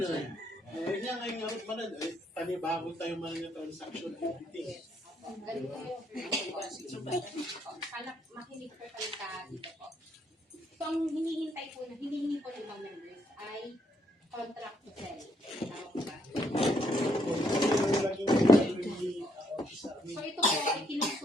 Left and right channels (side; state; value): both; normal; correlation 0.72